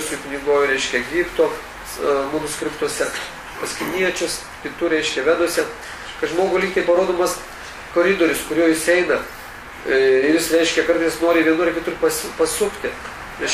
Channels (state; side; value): identical; both; correlation 1.00